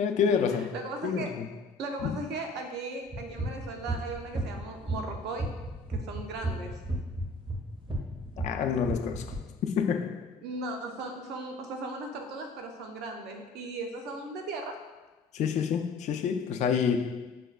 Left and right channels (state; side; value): quieter; right; 3.4 dB